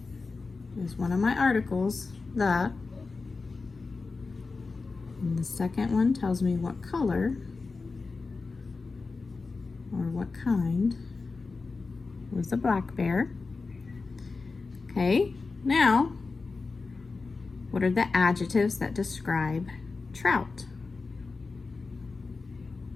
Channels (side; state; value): right; quieter; 4.1 dB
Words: is one of my articles, the. And the second one tells me what color or what kind was the black bear. Okay, now What are the adjectives that describe trout?